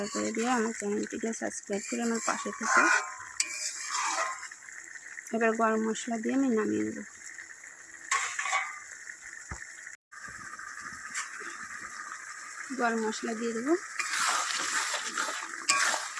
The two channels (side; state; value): both; identical; correlation 1.00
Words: করে দিয়ে আমার চ্যানেলটিকে সাবস্ক্রাইব করে আমার পাশে থেকে। এবার গরম মশলা দিয়ে আমি নামিয়ে নেব। গরম মশলা দিয়ে দেবো।